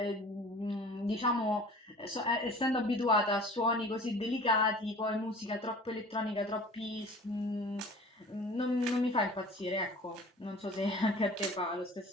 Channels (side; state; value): both; normal; correlation 0.44